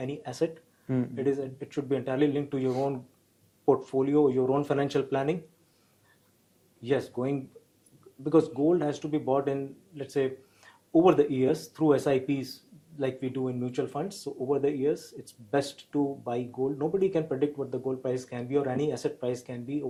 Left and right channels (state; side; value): identical; both; correlation 1.00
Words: asset. It should be entirely linked to your own portfolio, your own financial planning. Yes, because gold has to be bought in, let's say, over the years through SIPs like we do in mutual funds. So over the years, it's best to buy gold. Nobody can predict what the gold price can be or any asset price can be